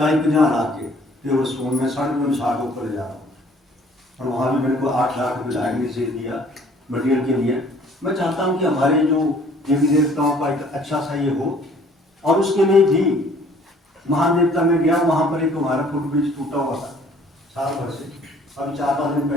लाख के पेवर स्टोन में सड़क में बिछा के ऊपर ले जा रहा हूँ। और वहाँ भी मेरे को 8 लाख रुपये लाइने से दिया मटीरियल के लिए। मैं चाहता हूँ कि हमारे जो देवी देवताओं का एक अच्छा सा ये हो, और उसके लिए भी महादेवता में गया, वहाँ पर एक हमारा फुट ब्रिज टूटा हुआ था साल भर से। अभी 4-5 दिन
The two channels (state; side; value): normal; both; correlation 0.56